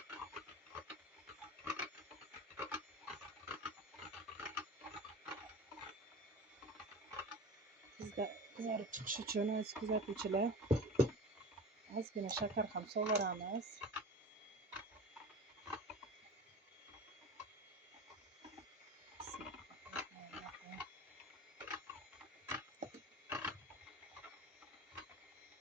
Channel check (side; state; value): both; normal; correlation 0.34